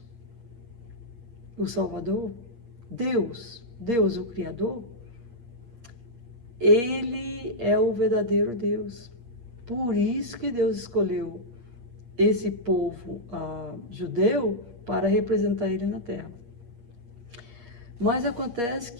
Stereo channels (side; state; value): left; late; 8.4 ms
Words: o Salvador, Deus o Criador, ele é o verdadeiro Deus. Por isso que Deus escolheu esse povo judeu para representar ele na terra. Mas acontece